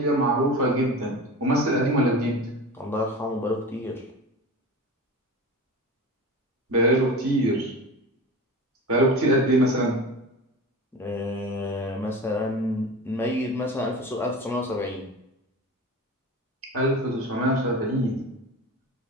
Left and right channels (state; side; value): normal; both; correlation 0.32